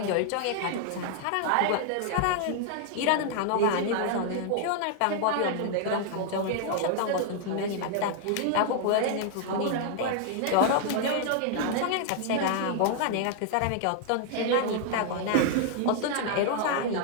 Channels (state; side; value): different; both; correlation 0.00